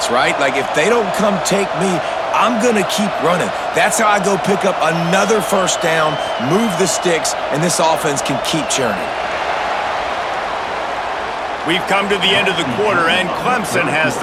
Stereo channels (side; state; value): both; identical; correlation 1.00